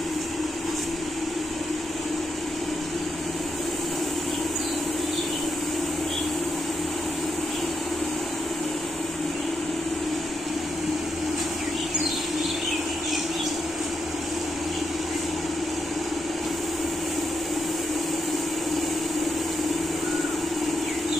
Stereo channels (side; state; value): both; normal; correlation 0.82